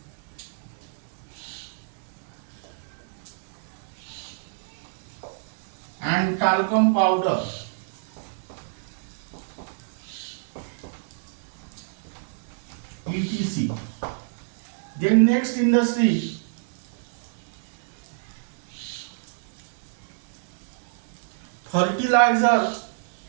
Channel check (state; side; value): silent; left; 60 dB below the other